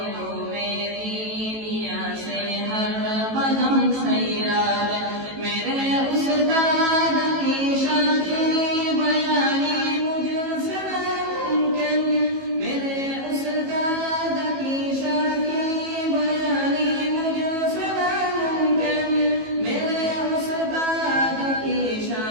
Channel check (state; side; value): late; left; 18 ms